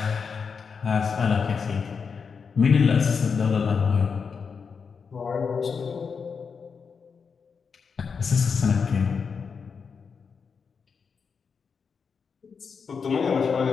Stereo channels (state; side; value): quieter; right; 5.7 dB